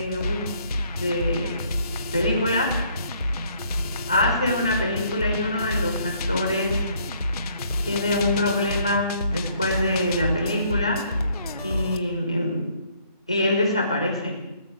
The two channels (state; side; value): inverted; both; correlation -0.65